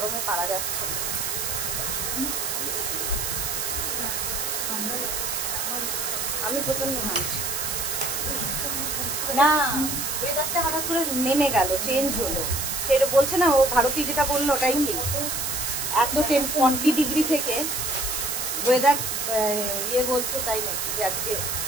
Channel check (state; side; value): noise; right; hiss, 1 dB below the sound